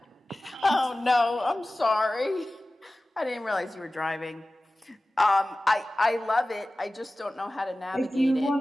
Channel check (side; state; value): both; normal; correlation 0.97